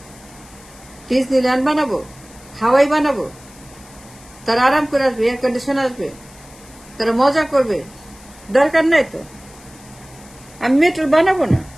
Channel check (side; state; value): left; noise; hiss, 23 dB below the sound